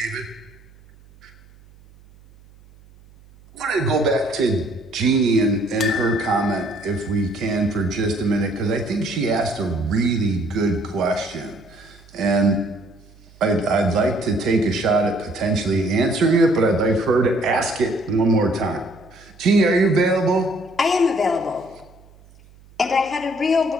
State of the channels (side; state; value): right; noise; hum, 26 dB below the sound